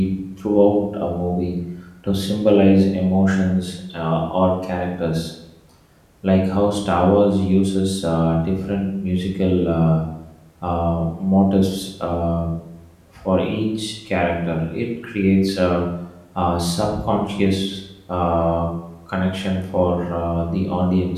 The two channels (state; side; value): identical; both; correlation 1.00